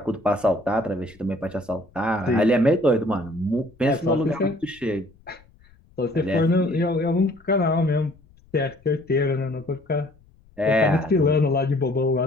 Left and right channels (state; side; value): noise; left; rumble, 29 dB below the sound